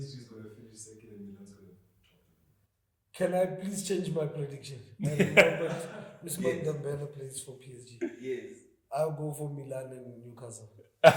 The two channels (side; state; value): both; identical; correlation 1.00